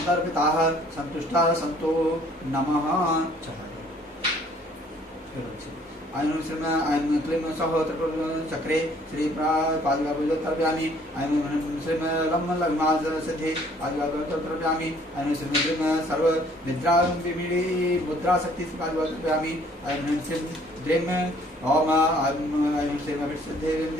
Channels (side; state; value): both; normal; correlation 0.59